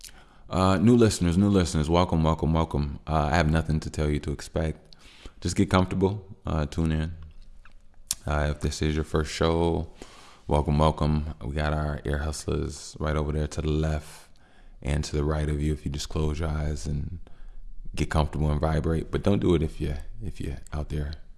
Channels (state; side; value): identical; both; correlation 1.00